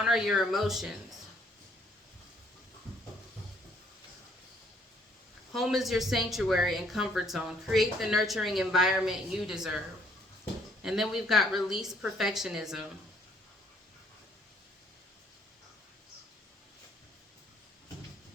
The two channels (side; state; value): both; normal; correlation 0.65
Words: your emotions. Home is your sanctuary and comfort zone. Create the nurturing environment you deserve. And then we've got release perfectionism.